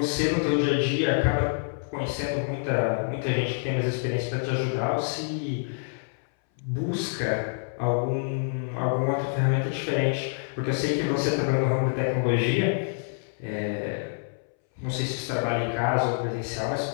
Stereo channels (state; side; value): silent; right; 60 dB below the other